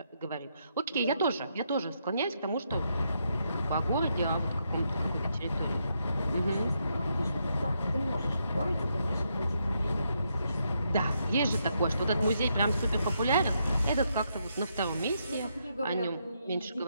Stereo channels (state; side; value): inverted; both; correlation -0.79